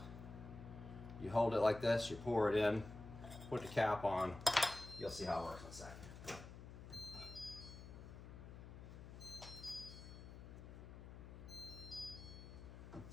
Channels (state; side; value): noise; left; hum, 12 dB below the sound